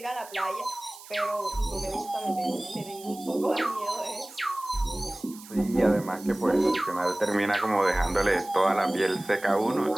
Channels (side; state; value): right; noise; hiss, 18 dB below the sound